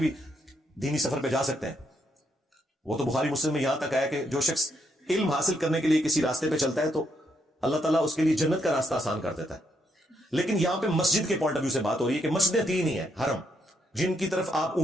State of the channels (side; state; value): both; normal; correlation 0.76